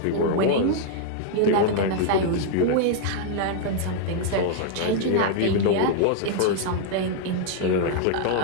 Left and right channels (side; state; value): both; different; correlation -0.01